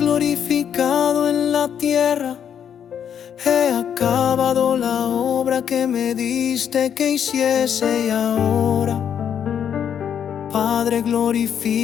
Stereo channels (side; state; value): right; quieter; 8.6 dB